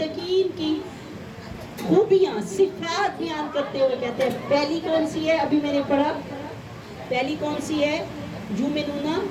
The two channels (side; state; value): both; identical; correlation 1.00